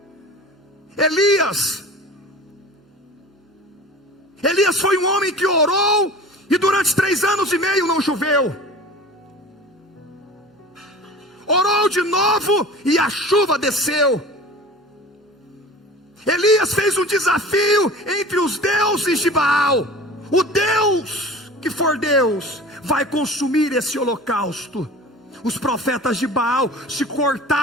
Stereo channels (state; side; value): normal; both; correlation 0.39